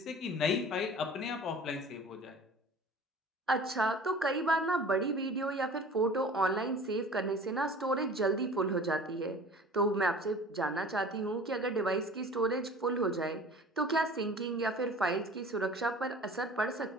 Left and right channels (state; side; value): normal; both; correlation 0.43